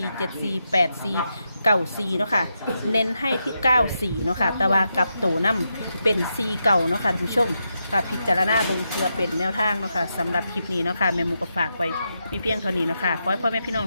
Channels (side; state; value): both; inverted; correlation -0.85